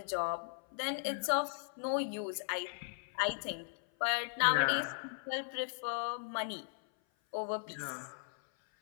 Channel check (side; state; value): right; silent; 53 dB below the other